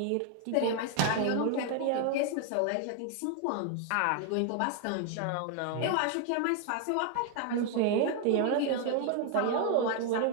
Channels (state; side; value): different; both; correlation 0.00